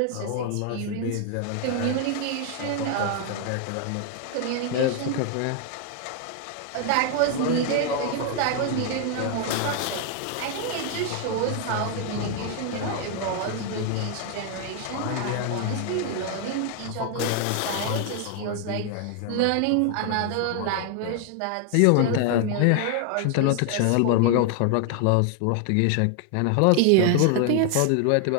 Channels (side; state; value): both; different; correlation 0.00